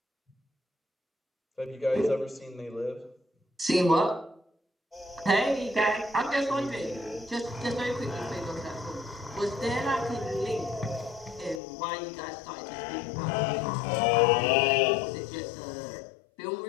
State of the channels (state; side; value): drops out; right; at 11.6 s